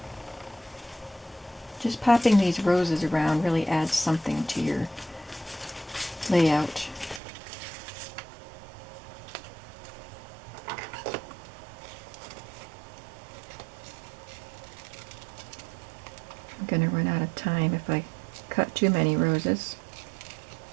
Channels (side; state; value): left; drops out; at 7.2 s